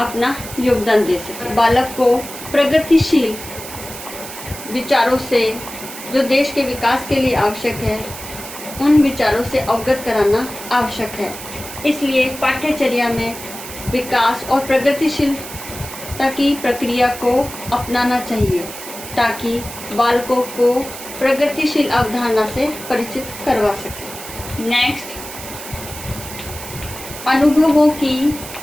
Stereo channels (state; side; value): noise; right; hiss, 12 dB below the sound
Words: योगदान दे सके। बालक को प्रगतिशील विचारों से, जो देश के विकास के लिए आवश्यक है, उन विचारों से अवगत कराना आवश्यक है। इसलिए पाठ्यचर्या में विकास और प्रगतिशीलता की प्रक्रिया को अपनाना चाहिए, ताकि बालकों को प्रगतिशील अवधारणा से परिचित करवा सके। नेक्स्ट, अनुभवों की